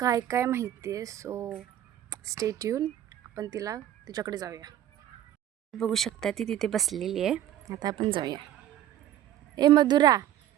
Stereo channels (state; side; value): quieter; left; 11.8 dB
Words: काय माहिती आहे. So stay tune. आपण तिच्याकडे जाऊया. बघू शकता ती तिथे बसलेली आहे. आता आपण जाऊया. ए मधुरा,